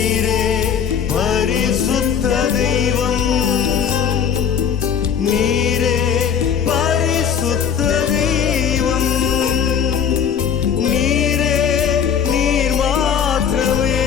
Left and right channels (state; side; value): quieter; right; 7.7 dB